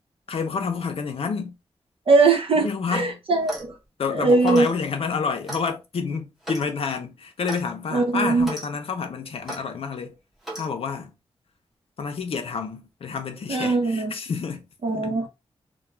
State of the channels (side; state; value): both; normal; correlation 0.53